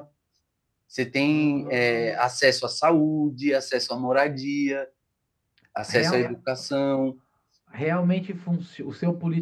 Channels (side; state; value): both; identical; correlation 1.00